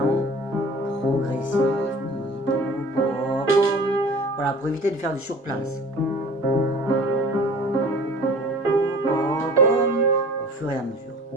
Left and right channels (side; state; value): both; normal; correlation 0.44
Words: progressif. Voilà, pour éviter de faire du surplace. Au fur et à mesure.